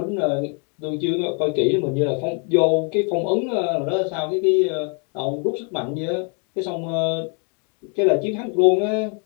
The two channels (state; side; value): quieter; right; 39.2 dB